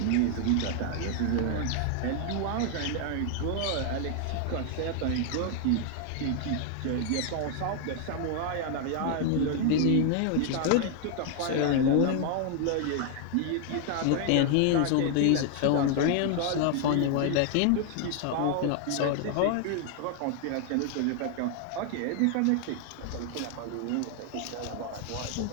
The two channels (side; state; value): both; different; correlation 0.00